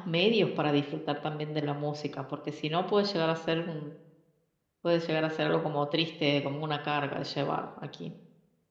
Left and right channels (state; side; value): identical; both; correlation 1.00